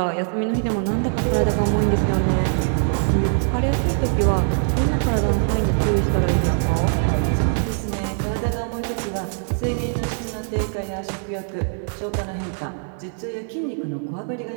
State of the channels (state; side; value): silent; left; 64 dB below the other